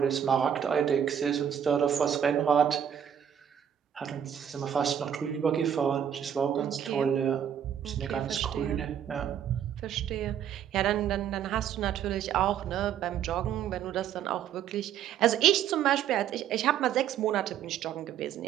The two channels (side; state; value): left; quieter; 9.2 dB